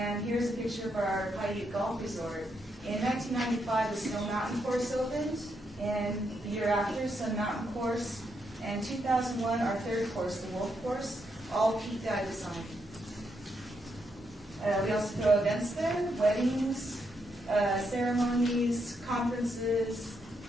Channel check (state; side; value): normal; both; correlation 0.79